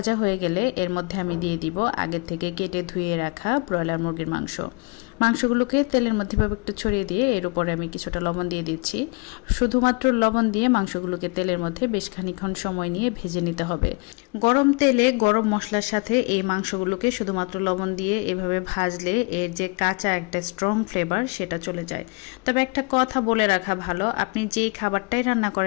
হয়ে গেলে এর মধ্যে আমি দিয়ে দিব আগের থেকে কেটে ধুয়ে রাখা ব্রয়লার মুরগির মাংসগুলোকে তেলের মধ্যে ভাবে একটু ছড়িয়ে দিয়ে এর উপরে আমি কিছুটা লবণ দিয়ে দিচ্ছি। শুধুমাত্র লবণ দিয়ে মাংসগুলোকে তেলের মধ্যে বেশ খানিকক্ষণ সময় নিয়ে ভেজে নিতে হবে। গরম তেলে গরম মশলার সাথে এই মাংসগুলোকে শুধুমাত্র লবণ দিয়ে এভাবে ভাজলে এর যে কাঁচা একটা স্ট্রং ফ্লেভার সেটা চলে যায়। তবে একটা কথা বলে রাখা ভালো, আপনি যেই খাবারটাই রান্না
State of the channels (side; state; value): right; quieter; 30.4 dB